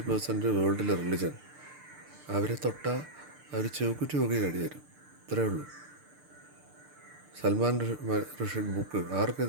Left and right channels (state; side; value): late; left; 6.7 ms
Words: വേൾഡിലെ റിലിജൻ. അവരെ തൊട്ടാൽ അവർ ചെവുക്കുറ്റി നോക്കി കഴിയരും. ഇത്രയേ ഉള്ളൂ. സൽമാൻ റുഷ്ദി ബുക്ക്